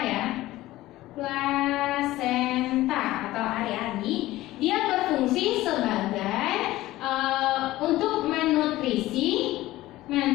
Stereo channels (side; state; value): right; quieter; 16.7 dB